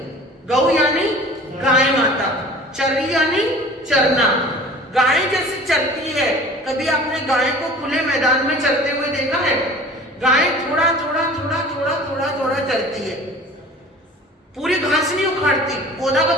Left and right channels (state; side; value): normal; both; correlation 0.43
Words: गौ यानी गाय माता, चरी यानी चरना। गाय जैसे चरती है, कभी आपने गाय को खुले मैदान में चरते हुए देखा है? गाय थोड़ा थोड़ा थोड़ा थोड़ा थोड़ा थोड़ा चरती है, पूरी घास नहीं उखाड़ती, पौधा का